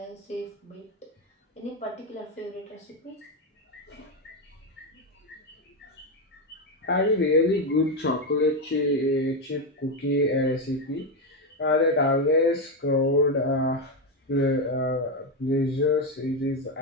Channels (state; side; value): normal; both; correlation 0.08